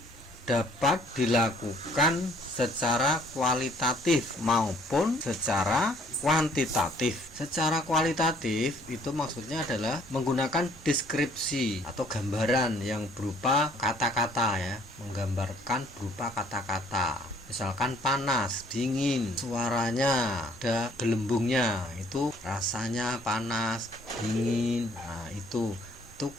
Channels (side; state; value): both; normal; correlation 0.60